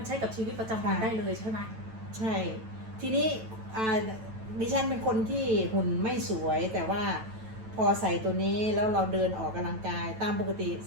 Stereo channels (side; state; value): left; late; 9.1 ms